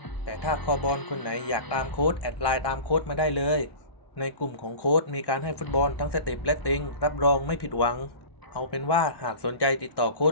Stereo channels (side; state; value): right; late; 1.1 ms